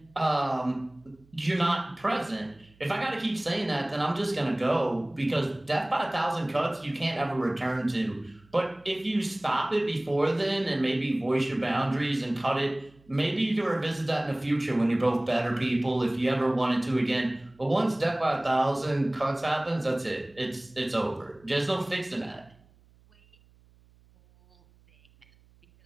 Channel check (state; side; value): noise; right; hum, 30 dB below the sound